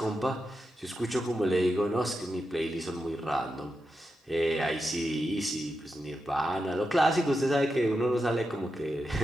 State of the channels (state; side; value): normal; both; correlation 0.88